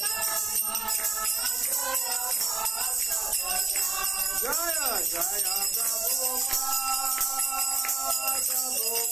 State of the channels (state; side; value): quieter; left; 3.6 dB